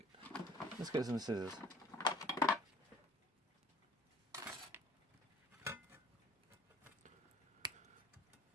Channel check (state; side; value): normal; both; correlation 0.51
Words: Let's get some scissors.